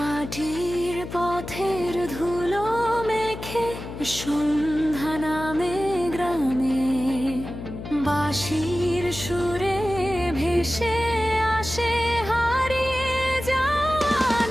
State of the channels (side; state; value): left; noise; hum, 10 dB below the sound